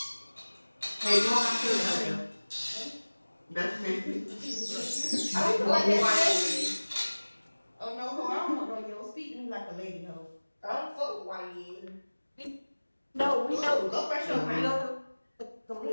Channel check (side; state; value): both; inverted; correlation -1.00